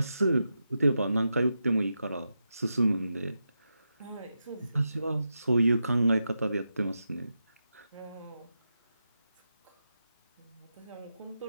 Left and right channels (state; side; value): inverted; both; correlation -0.88